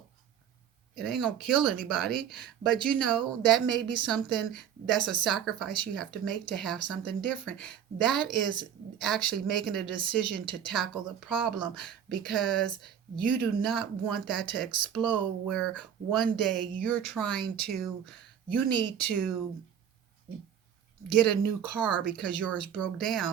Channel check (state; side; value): quieter; left; 8.9 dB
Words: It ain't gonna kill anybody, but that may be something, that's a sacrifice you have to make to have something different. That is actually making a decision to tackle the problem, because you do not want that to explode, where one day you need to get a new car because yours broke